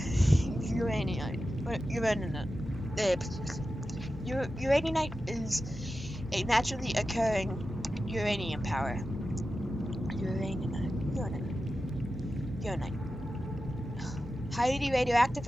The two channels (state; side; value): normal; both; correlation 0.92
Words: Uraninite is a naturally occurring uranium power. Uranite. Highly radioactive